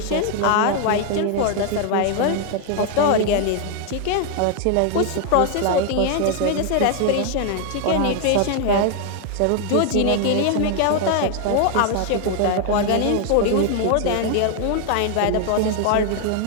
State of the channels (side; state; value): both; different; correlation 0.00